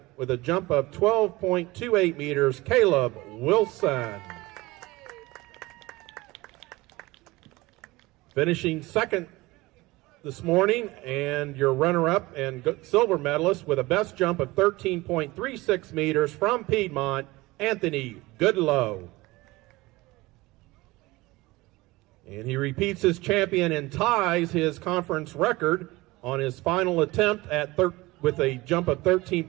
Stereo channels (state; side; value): quieter; left; 20.8 dB